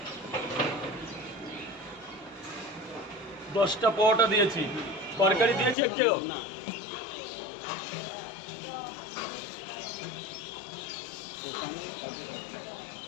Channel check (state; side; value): drops out; right; at 5.8 s